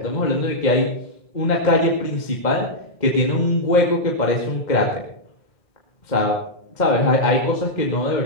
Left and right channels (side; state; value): right; late; 2.1 ms